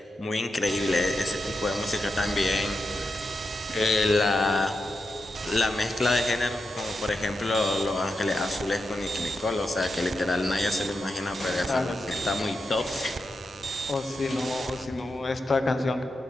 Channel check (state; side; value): normal; both; correlation 0.87